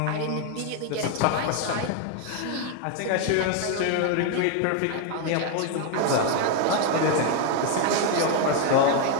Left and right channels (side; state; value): both; different; correlation 0.01